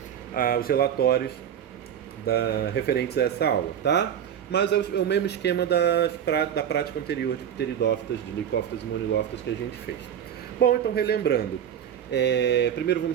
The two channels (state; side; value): quieter; left; 9.3 dB